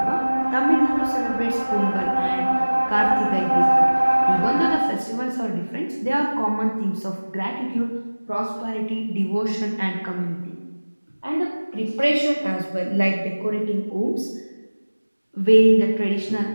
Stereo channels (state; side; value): inverted; both; correlation -1.00